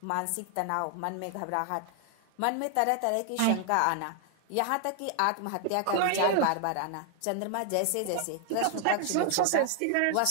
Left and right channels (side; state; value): both; different; correlation 0.00